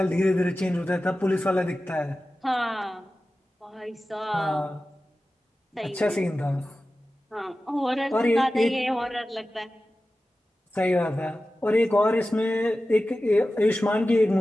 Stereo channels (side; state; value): both; normal; correlation 0.95